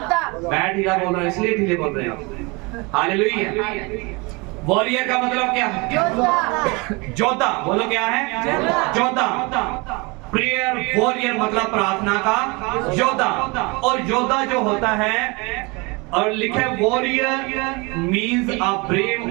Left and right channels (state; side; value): quieter; left; 27.5 dB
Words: मैं ढीला बोल रहा हूँ इसलिए ढीले बोल रहे हो। हालेलुया। वॉरियर का मतलब क्या है? जोधा। बोलो क्या है? जोधा। प्रेयर वॉरियर मतलब प्रार्थना का योद्धा। और योद्धा जो होता है, और लिखे वॉरियर मींस अ